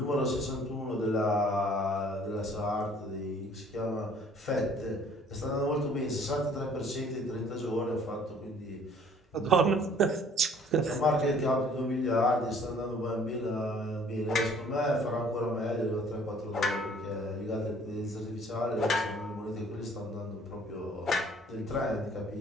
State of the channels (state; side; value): normal; both; correlation 0.56